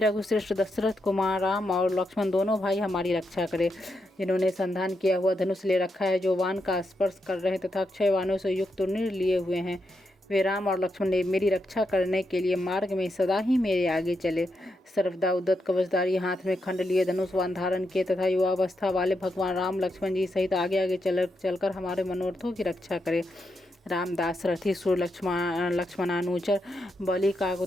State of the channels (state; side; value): normal; both; correlation 0.83